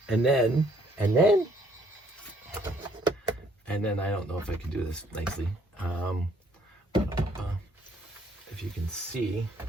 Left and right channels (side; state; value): both; normal; correlation 0.65